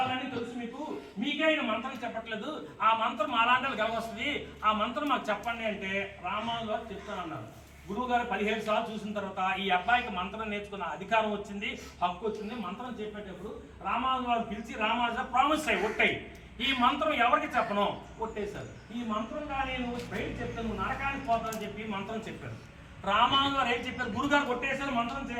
తెలుసు, మీకే ఆయన మంత్రం చెప్పట్లేదు, ఆ మంత్రం అలాంటి గెలవస్తుంది, ఆ మంత్రం మాకు చెప్పండి అంటే రామాను గారు చెప్తానన్నారు. గురువు గారు 17 సార్లు చూసిన తర్వాత ఈ అబ్బాయికి మంత్రం నేర్చుకున్న అధికారం వచ్చింది, హక్కు వచ్చింది. మంత్రం చెప్పేటప్పుడు రామాను గారు పిలిచి రామాను ప్రామిస్ అయ్యి ఒట్టాయి, ఈ మంత్రం ఎవరికి చెప్పను కొట్టేశారు. ఈ మంత్రంగా నేను బయట చెప్తాను, నువ్వు నరకానికి పోతానని చెప్పి మంత్రం చెప్పారు. రామాను గారు ఏం చెప్పారు, గురుగారు కొట్టేశారు, మంత్రం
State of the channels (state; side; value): identical; both; correlation 1.00